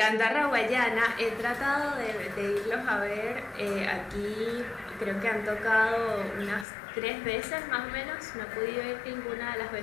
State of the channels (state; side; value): drops out; right; at 6.7 s